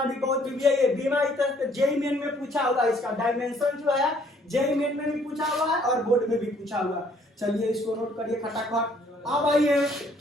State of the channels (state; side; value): normal; both; correlation 0.63